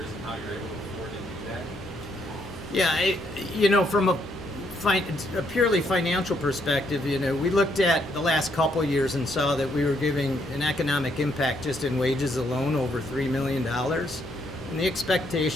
and how you're able to afford to do that? Yeah, from a purely financial perspective, we looked at the last couple of years and saw that we were giving an economic impact just in wages alone over $3 million. And the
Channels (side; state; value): both; normal; correlation 0.72